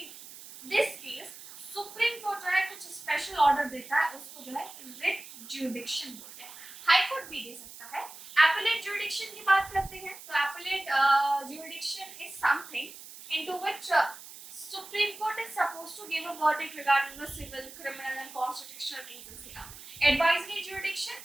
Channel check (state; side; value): noise; right; hiss, 15 dB below the sound